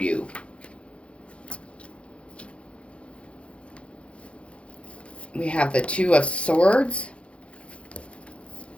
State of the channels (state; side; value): late; right; 0.060 ms